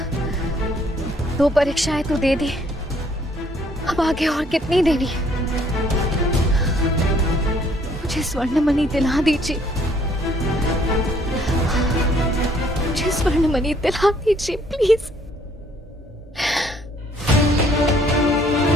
2 परीक्षाएं तो दे दी, अब आगे और कितनी देनी है? मुझे स्वर्णमणि दिला दीजिए, मुझे स्वर्णमणि दिला दीजिए प्लीज।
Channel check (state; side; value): normal; both; correlation 0.63